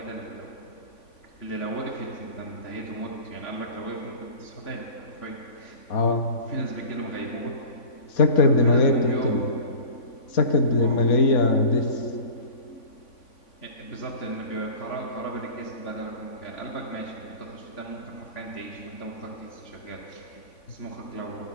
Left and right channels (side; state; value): right; late; 3.5 ms